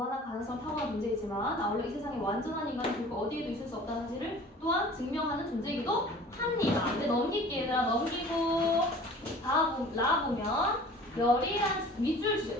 가능성을 타고난 존재이지만 아울러 이 세상에 완전한 인간은 결국 어디에도 있을 수 없다는 사실을 또한 증명하는 존재이기도 합니다. 근데 넘길게 얘들아. 넘기고 라 보면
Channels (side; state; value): both; normal; correlation 0.45